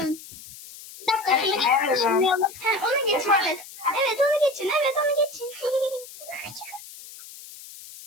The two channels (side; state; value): left; noise; hiss, 16 dB below the sound